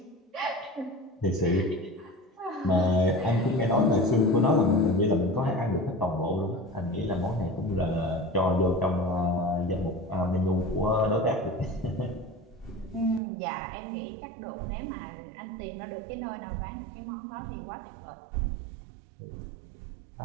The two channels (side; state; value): left; drops out; at 13.2 s